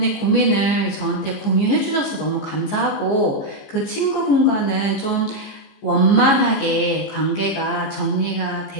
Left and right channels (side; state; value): right; late; 14 ms